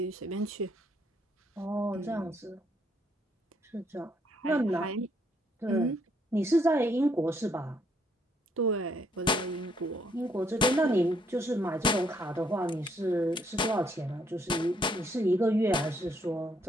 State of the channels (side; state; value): both; normal; correlation 0.71